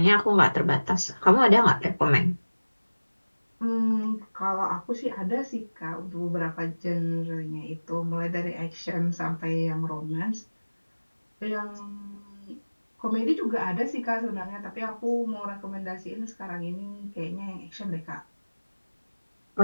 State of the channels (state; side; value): inverted; both; correlation -1.00